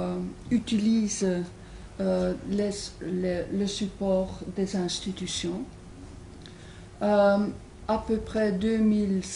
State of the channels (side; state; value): both; identical; correlation 1.00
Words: utilisent le support des institutions. À peu près